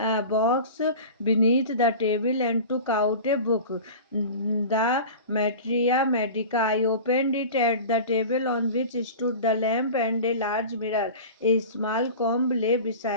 box beneath the table and took out a book, the Materia Medica. I opened it at the table on which stood the lamp and a large mirror. A small comb lay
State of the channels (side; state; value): both; inverted; correlation -0.34